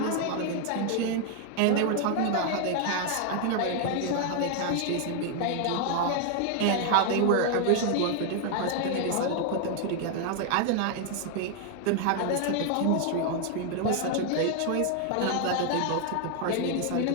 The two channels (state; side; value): different; both; correlation 0.00